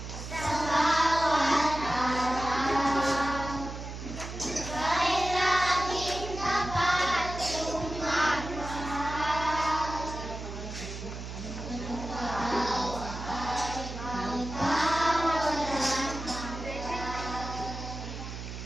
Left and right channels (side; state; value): right; noise; hum, 8 dB below the sound